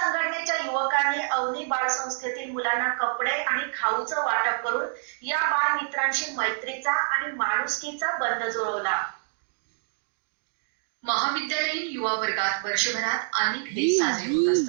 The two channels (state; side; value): silent; left; digital silence